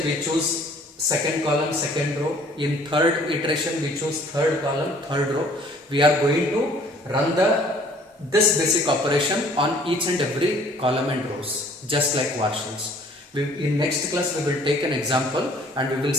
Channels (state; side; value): normal; both; correlation 0.56